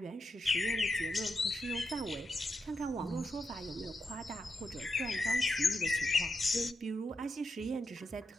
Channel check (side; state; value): both; normal; correlation 0.86